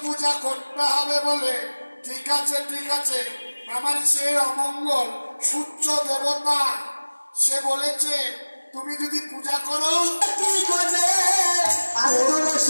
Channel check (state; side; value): inverted; both; correlation -1.00